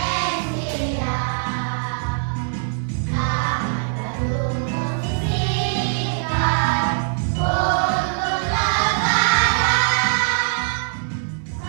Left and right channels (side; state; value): left; silent; 61 dB below the other